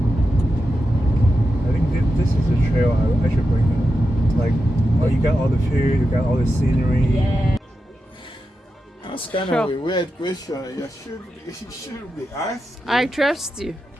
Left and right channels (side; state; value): both; normal; correlation 0.89